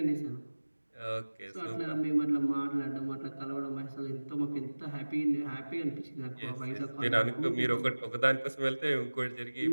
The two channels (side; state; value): both; inverted; correlation -1.00